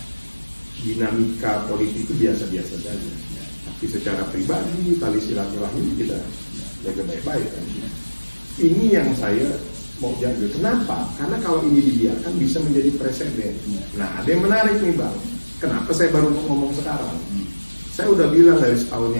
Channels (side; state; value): both; inverted; correlation -1.00